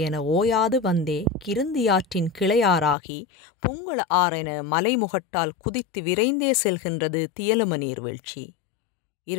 என ஓயாது வந்தே கிருந்தியாற்றின் கிளையாறாகி புங்குள ஆறென மலைமுகட்டால் குதித்து விரைந்தே செல்கின்றது தியலும நீர்வீழ்ச்சி.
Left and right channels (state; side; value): drops out; right; at 3.0 s